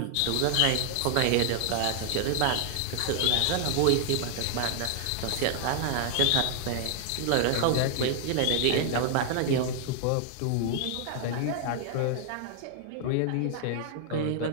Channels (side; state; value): both; different; correlation 0.00